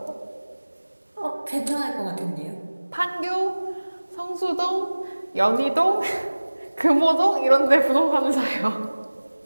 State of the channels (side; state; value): both; inverted; correlation -1.00